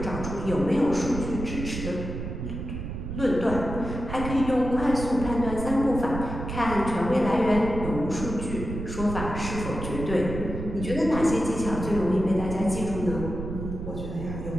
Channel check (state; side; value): noise; right; rumble, 6 dB below the sound